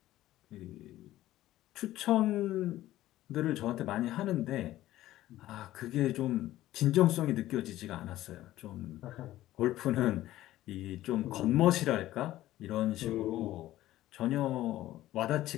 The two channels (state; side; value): quieter; right; 14.9 dB